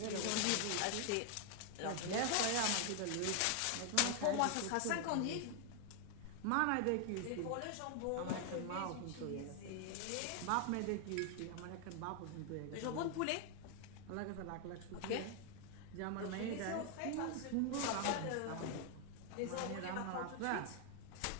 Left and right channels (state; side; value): different; both; correlation 0.00